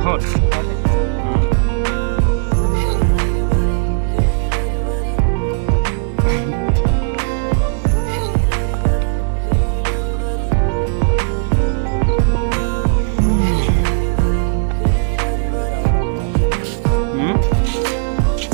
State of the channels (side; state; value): left; silent; digital silence